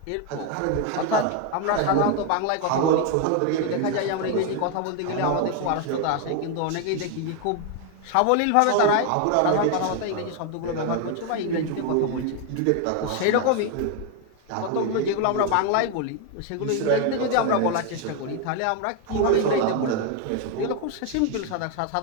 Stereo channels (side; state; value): both; different; correlation 0.01